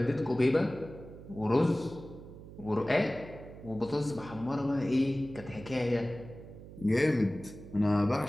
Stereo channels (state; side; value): noise; right; hum, 15 dB below the sound